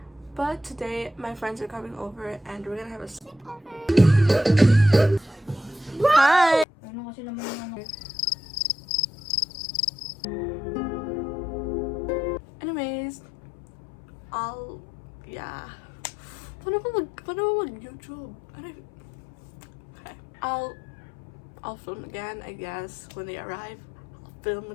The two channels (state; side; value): drops out; right; at 6.7 s